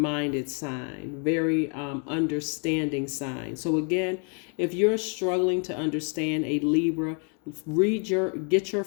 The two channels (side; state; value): right; quieter; 39.8 dB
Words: sign, very understanding sign. So again, if you're struggling to understand a Libra, get your